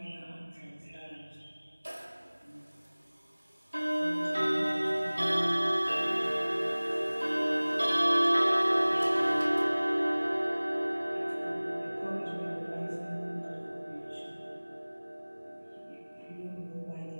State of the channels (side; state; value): both; inverted; correlation -1.00